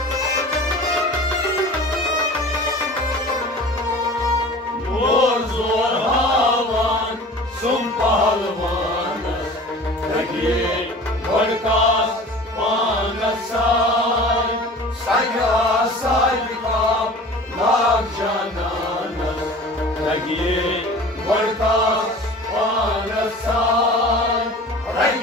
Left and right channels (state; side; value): normal; both; correlation 0.41